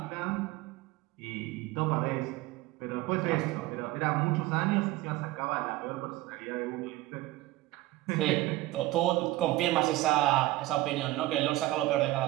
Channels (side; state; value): left; quieter; 17.6 dB